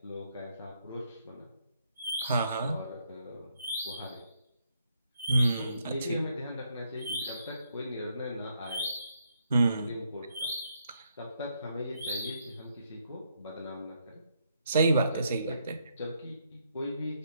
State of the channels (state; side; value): inverted; both; correlation -0.75